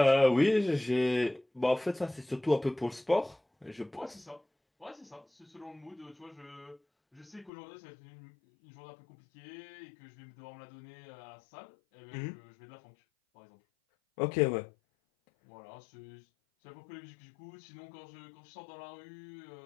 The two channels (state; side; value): drops out; right; at 7.5 s